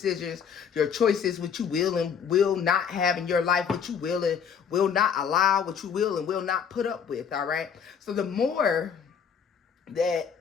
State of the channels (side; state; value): right; quieter; 7.1 dB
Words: your choices, what you will and will not have in your life, what you will and will not allow, what you will and will not put up with, all right? So the more that